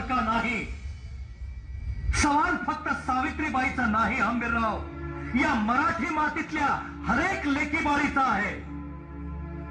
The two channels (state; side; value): identical; both; correlation 1.00